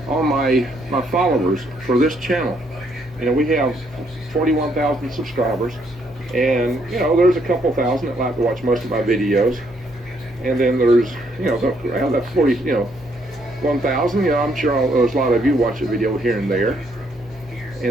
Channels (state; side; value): normal; both; correlation 0.71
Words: All my followers for this channel, we have 41,000 subscribers, and there's a couple thousand that like to watch most of my videos, and then there's around that 1,000. I'm sure there's a lot of you watch a video here and there,